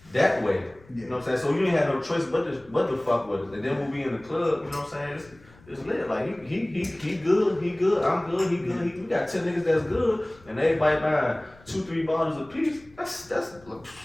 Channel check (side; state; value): left; noise; rumble, 26 dB below the sound